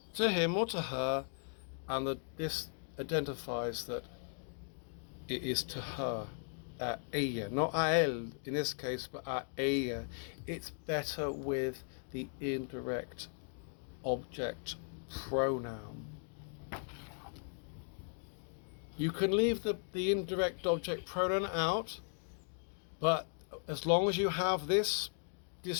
to him or to her, and this identifies that it is to her. A ella, not a él in this case, but a ella. It's better with the indirect object pronoun. You can leave the indirect object pronoun out, but as long as you have this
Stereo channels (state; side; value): silent; right; 53 dB below the other